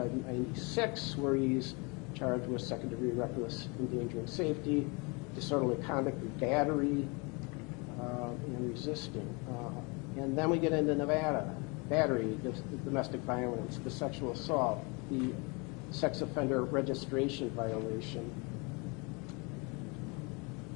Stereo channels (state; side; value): quieter; right; 30.0 dB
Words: where he's charged with second-degree reckless endangering safety, disorderly conduct and battery, and resisting. And then we get into Nevada: battery, domestic violence, the sexual assault, the sex offender registration violation,